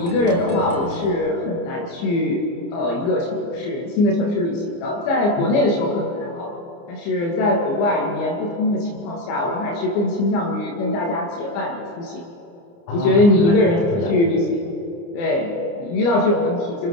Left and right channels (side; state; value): right; late; 29 ms